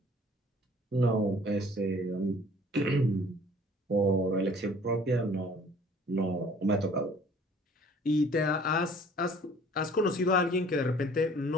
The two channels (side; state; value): both; normal; correlation 0.53